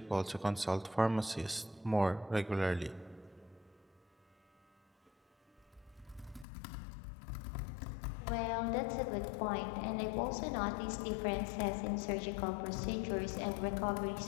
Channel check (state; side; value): drops out; right; at 6.5 s